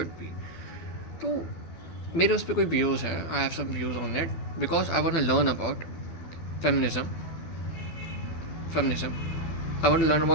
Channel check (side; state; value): right; late; 12 ms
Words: be. तो मेरे उस पर कोई व्यूज़ है, I have some views on it because I want to learn about feminism feminism I want to learn